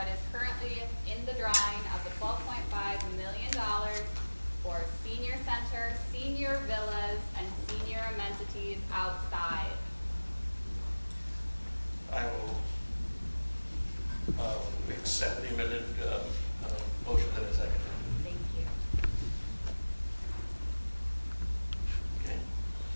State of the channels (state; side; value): inverted; both; correlation -1.00